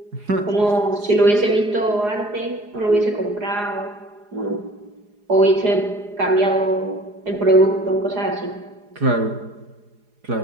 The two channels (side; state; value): left; late; 4.8 ms